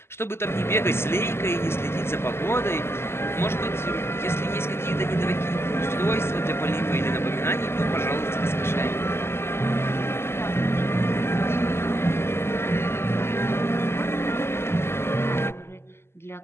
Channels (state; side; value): late; right; 0.12 ms